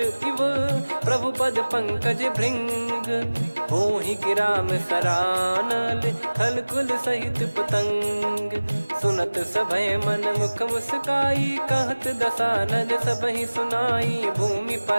प्रभु पद पंकज भृंग, होहि कि राम सरानल, खल कुल सहित पतंग, सुनत सभय मन मुख मुस्काई, कहत दसानन सबहि सुनाई, भूमि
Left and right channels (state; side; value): inverted; both; correlation -1.00